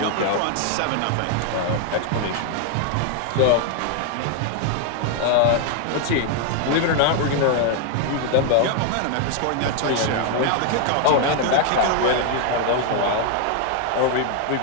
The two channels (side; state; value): both; different; correlation 0.01